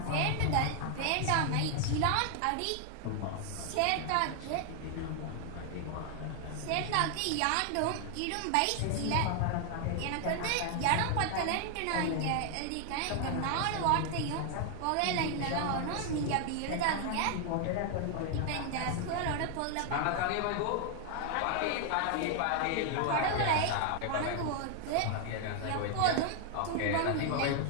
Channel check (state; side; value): different; both; correlation 0.00